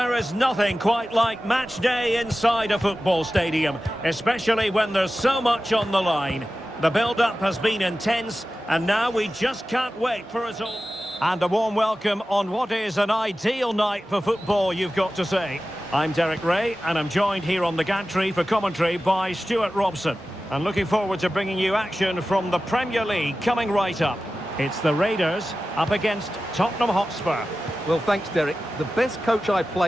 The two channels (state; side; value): normal; both; correlation 0.94